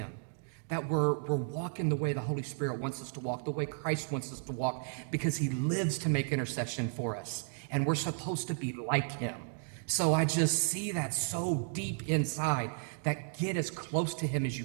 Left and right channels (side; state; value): left; silent; digital silence